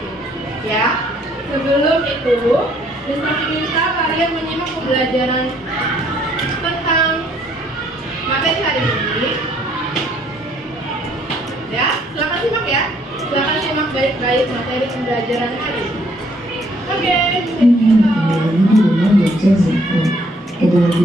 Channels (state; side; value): normal; both; correlation 0.65